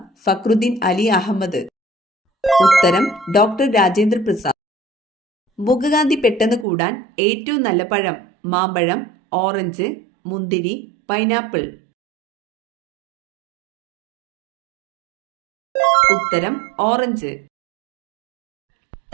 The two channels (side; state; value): left; drops out; at 6.7 s